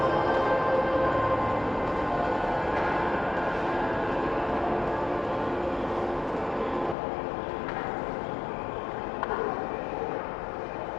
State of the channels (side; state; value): right; drops out; at 7.0 s